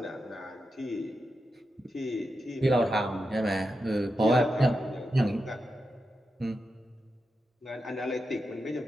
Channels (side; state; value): both; normal; correlation 0.88